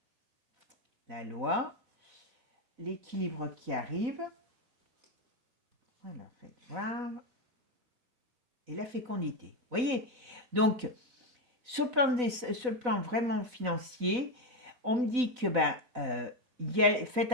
la loi, l'équilibre qui arrive, voilà, faites voir, et la fécondité. Vous voyez, donc, sur le plan vraiment financier, on me dit que faites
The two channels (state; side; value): late; left; 4.0 ms